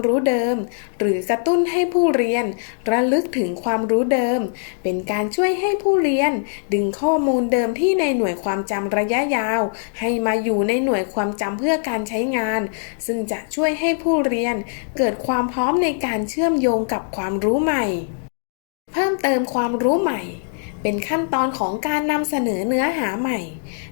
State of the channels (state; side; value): silent; right; digital silence